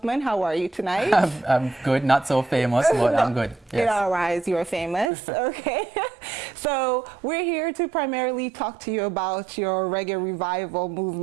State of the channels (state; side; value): drops out; left; at 5.1 s